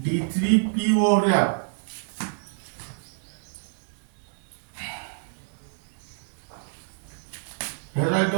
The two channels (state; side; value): silent; left; digital silence